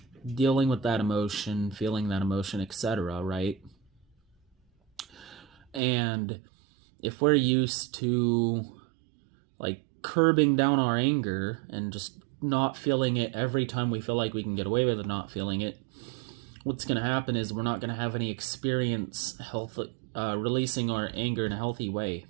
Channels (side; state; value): left; drops out; at 5.8 s